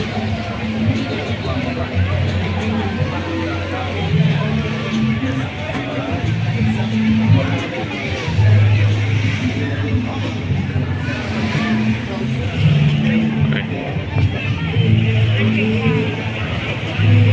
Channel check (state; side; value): identical; both; correlation 1.00